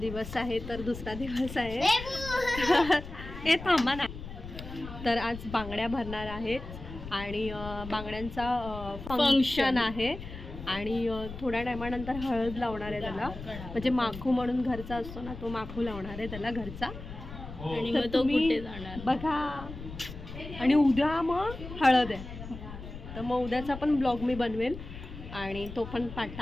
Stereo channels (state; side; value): noise; left; rumble, 11 dB below the sound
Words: दिवस आहे, तर दुसरा दिवस आहे. हे थांबा ना. तर आज बांगड्या भरणार आहेत आणि बांगड्यांचा फंक्शन आहे आणि थोड्या टायमानंतर हळद लावणार आहे त्याला. म्हणजे माखू म्हणून घरचा असतो ना, तो माखू लावणार आहे त्याला घरचा. आणि मग तो कुठे जाणार बघा. आणि उद्या मग हळद आहे, तर मग उद्याचा पण ब्लॉग मी बनवेल आणि तो पण